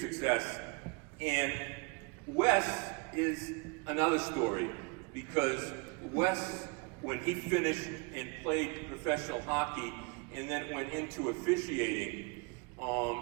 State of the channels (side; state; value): left; quieter; 31.7 dB